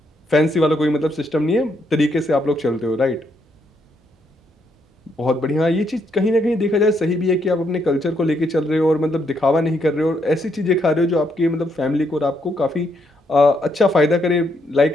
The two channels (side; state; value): both; normal; correlation 0.76